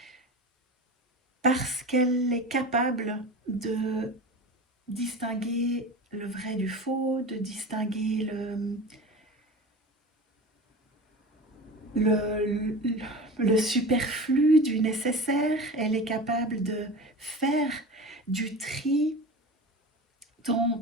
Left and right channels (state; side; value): normal; both; correlation 0.32